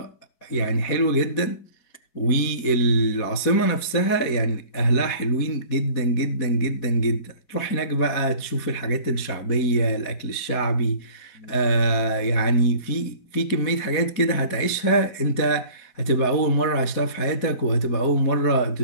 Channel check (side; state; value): right; late; 4.2 ms